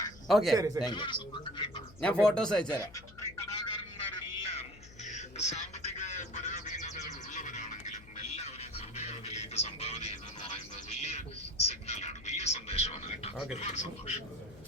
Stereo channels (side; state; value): left; noise; hum, 20 dB below the sound